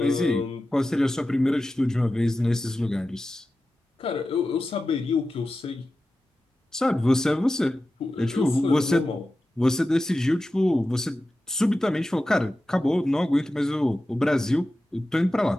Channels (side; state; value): both; normal; correlation 0.93